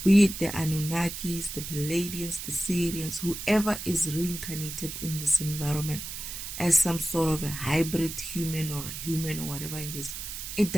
be it the Anunnakis, the Palladians, the Syrians, whoever is reincarnated in this environment as some sort of a hybrid human or whatever it is, it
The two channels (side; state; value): right; noise; hiss, 8 dB below the sound